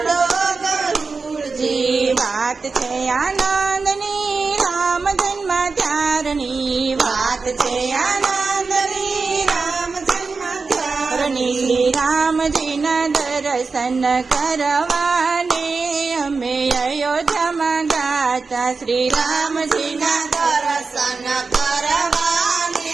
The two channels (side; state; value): left; quieter; 4.4 dB